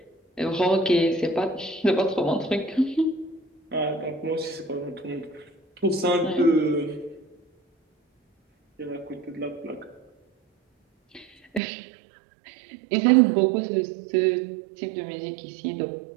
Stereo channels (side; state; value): left; drops out; at 11.6 s